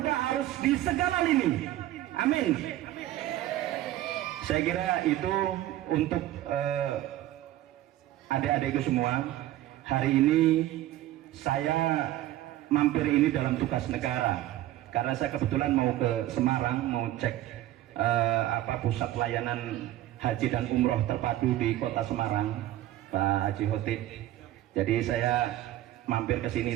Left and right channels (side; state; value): left; quieter; 14.4 dB